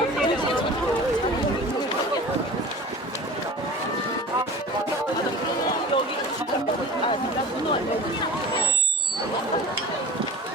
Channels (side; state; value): both; normal; correlation 0.39